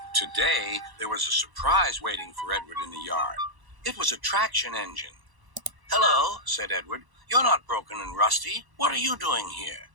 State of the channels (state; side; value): late; left; 1.0 ms